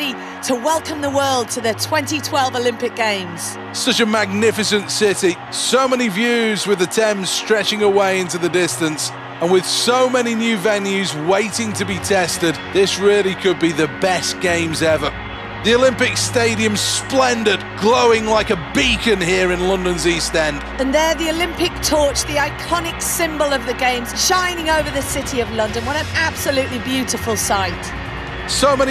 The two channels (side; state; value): both; identical; correlation 1.00